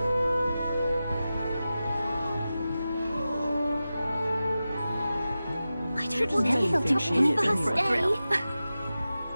I don't want Nelly Nelly think to she on is first anyway? day.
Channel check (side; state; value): both; inverted; correlation -0.94